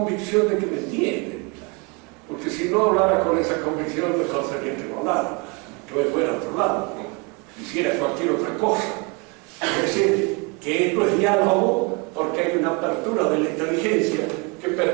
de que me entienden, porque si no hablara con esa convicción mejor sería que no hablara, que me fuera a otro lado, hiciera cualquier otra cosa. Es decir, que esto es diálogo porque hay una apertura de la inteligencia que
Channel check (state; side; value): quieter; left; 30.8 dB